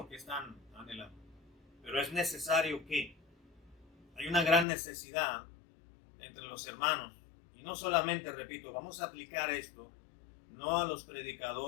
que están anhelando, pero es necesario que hay una gran necesidad entre los hermanos, y no solamente, repito, vamos a aplicar esto no a los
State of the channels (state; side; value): drops out; right; at 4.7 s